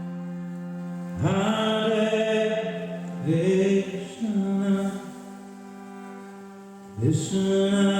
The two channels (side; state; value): both; identical; correlation 1.00